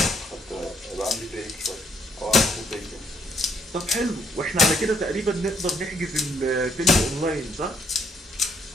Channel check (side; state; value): both; normal; correlation 0.69